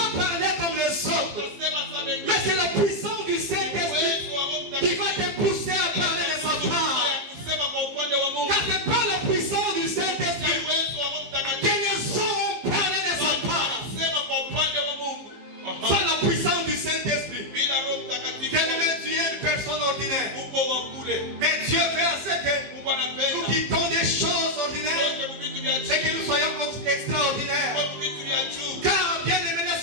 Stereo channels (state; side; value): late; left; 15 ms